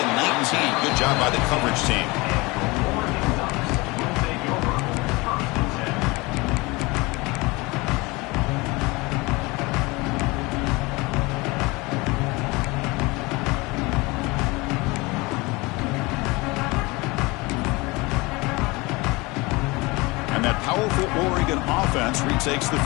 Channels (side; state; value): right; quieter; 24.2 dB